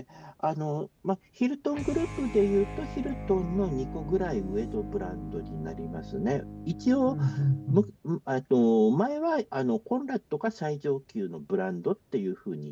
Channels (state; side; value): identical; both; correlation 1.00